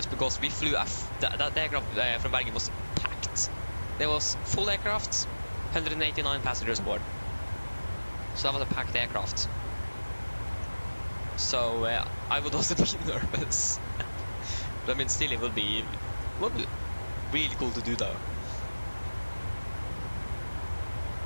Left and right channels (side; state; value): both; inverted; correlation -1.00